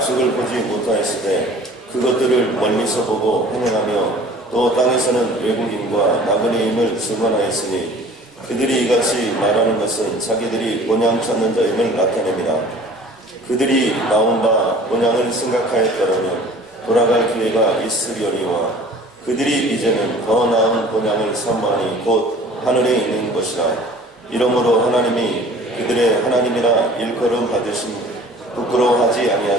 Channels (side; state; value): both; normal; correlation 0.47